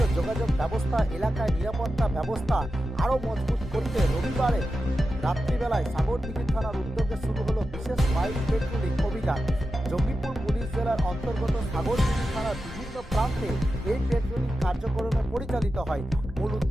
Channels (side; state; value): both; normal; correlation 0.91